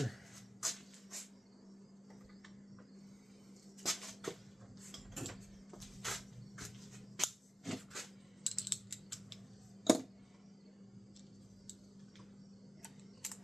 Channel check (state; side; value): normal; both; correlation 0.95